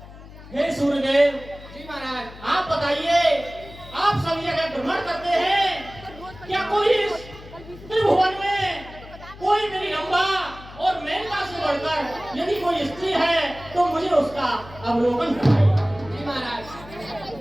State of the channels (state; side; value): noise; left; hum, 17 dB below the sound